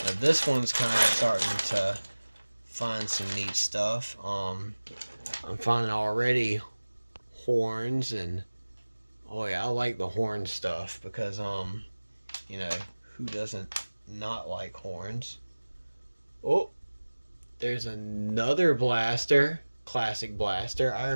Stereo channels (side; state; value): both; inverted; correlation -1.00